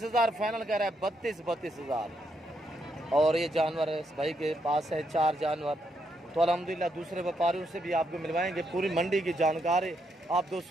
हज़ार फाइनल कह रहा है, 32 हज़ार। और ये जानवर है इस भाई के पास है 4 जानवर। तो अल्हम्दुलिल्लाह दूसरे व्यापारियों से भी आपको मिलवाएंगे, पूरी मंडी की जानकारी आप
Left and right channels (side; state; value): both; normal; correlation 0.78